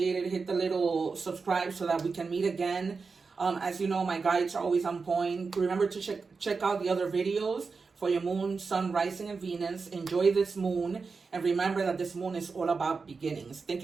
it. Hit the little subscribe so that we can meet again. As you know, my guides are always on point. Remember to check out the other videos for your moon, sun, rising, and Venus. Enjoy this moon. And remember that this moon is all about beginnings. Thank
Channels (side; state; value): left; quieter; 4.7 dB